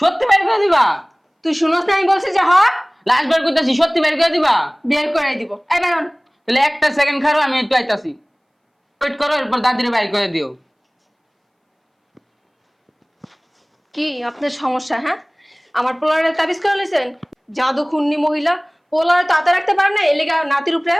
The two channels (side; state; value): both; identical; correlation 1.00